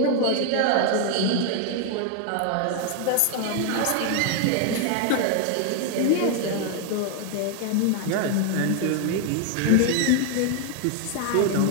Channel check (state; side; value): different; both; correlation 0.00